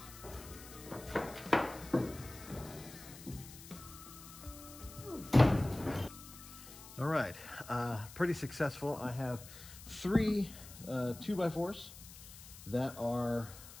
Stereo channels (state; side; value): noise; left; hiss, 16 dB below the sound